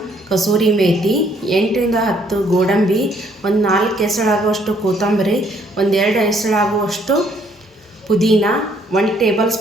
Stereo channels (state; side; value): normal; both; correlation 0.66